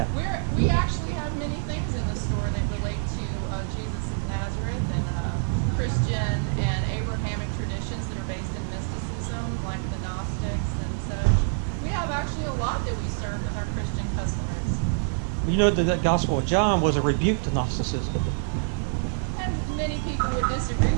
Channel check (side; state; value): left; silent; digital silence